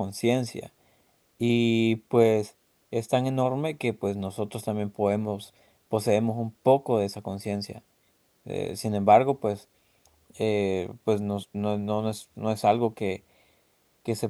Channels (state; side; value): identical; both; correlation 1.00